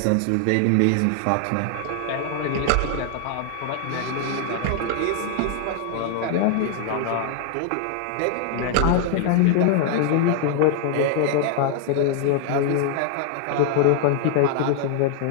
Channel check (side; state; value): both; different; correlation 0.00